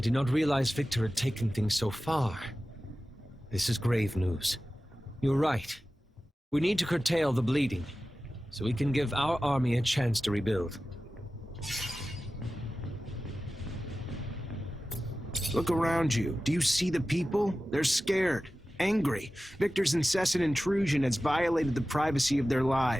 not realize Victor had taken things so far. This is grave news. You're right. We need to curtail the bleeding, so we can give our army a chance to rebuild. Look around you. Do you see the people? They're scared, angry. Victor's incessant intrusion has violated the privacy of their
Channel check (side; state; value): both; normal; correlation 0.95